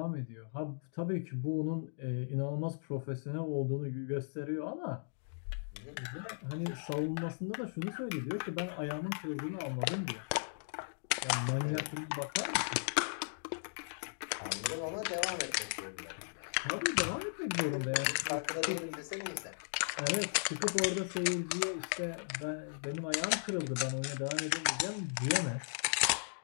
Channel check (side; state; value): right; silent; digital silence